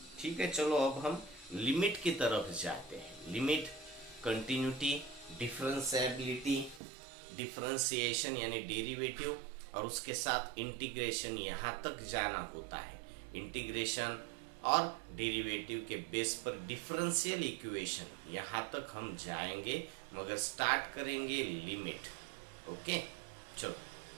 ठीक है चलो अब हम लिमिट की तरफ जाते हैं। लिमिट, कंटिन्यूटी, डिफरेंशिएबिलिटी, डिफरेंशिएशन यानी डेरिवेटिव, और उसके साथ इंटीग्रेशन, यहाँ तक जाना होता है। इंटीग्रेशन और डेरिवेटिव के बेस पर डिफरेंशियल इक्वेशन, यहाँ तक हम जाएंगे, मगर स्टार्ट करेंगे लिमिट। ओके चलो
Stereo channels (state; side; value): drops out; left; at 6.8 s